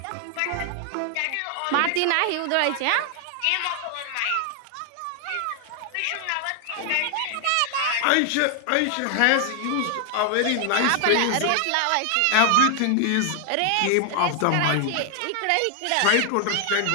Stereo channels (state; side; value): different; both; correlation 0.00